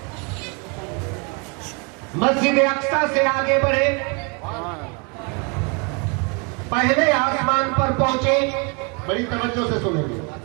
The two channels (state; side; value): quieter; left; 32.9 dB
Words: मस्जिद अक्सा से आगे बढ़े, पहले आसमान पर पहुंचे, बड़ी तवज्जो से सुनेंगे।